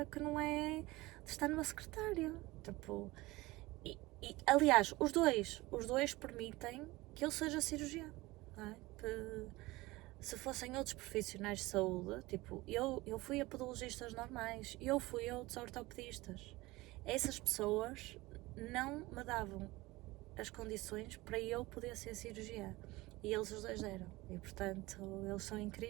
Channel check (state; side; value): quieter; left; 20.5 dB